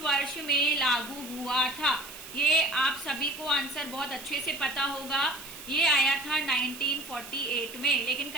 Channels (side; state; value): right; noise; hiss, 14 dB below the sound